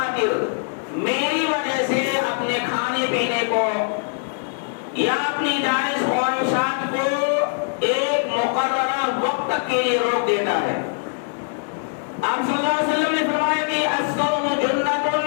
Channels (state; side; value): silent; right; digital silence